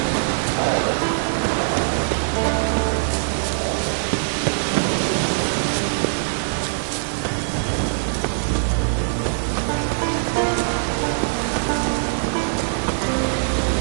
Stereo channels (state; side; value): silent; left; digital silence